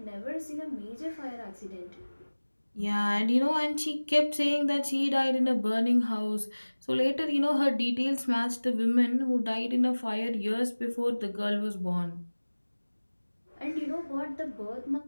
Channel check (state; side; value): inverted; both; correlation -1.00